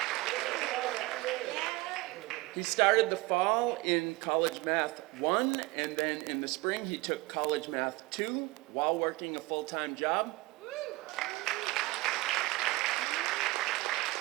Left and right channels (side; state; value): left; quieter; 21.1 dB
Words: He started the fall in College Math 1, and then in the spring he took College Math 2 while working a full-time job.